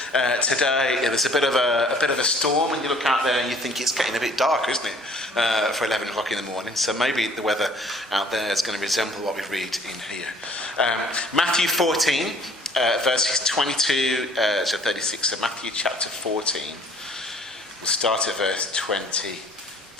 today. There's a bit of a storm, and you look out there and you think it's getting a bit darker, isn't it, for 11 o'clock in the morning? So maybe the weather out there is going to resemble what we read in here. Matthew 14, verses 22 to 36. So Matthew chapter 14. We'll start at verse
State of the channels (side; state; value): both; normal; correlation 0.56